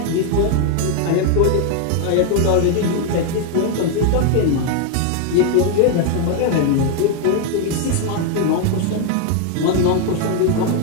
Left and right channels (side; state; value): both; different; correlation 0.01